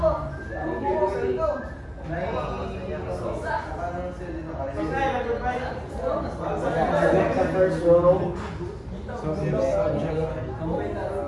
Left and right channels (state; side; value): identical; both; correlation 1.00